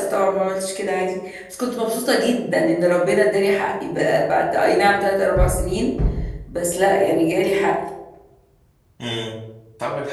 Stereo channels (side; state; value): both; identical; correlation 1.00